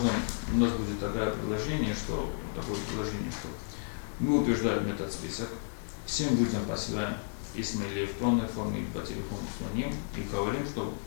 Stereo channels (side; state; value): right; silent; 56 dB below the other